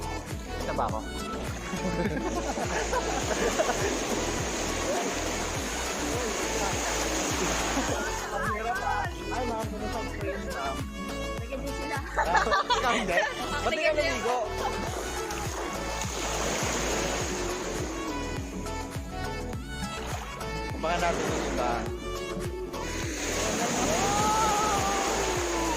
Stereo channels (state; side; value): identical; both; correlation 1.00